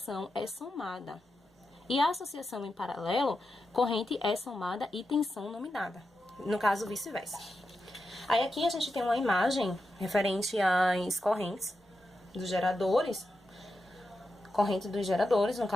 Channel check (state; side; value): normal; both; correlation 0.88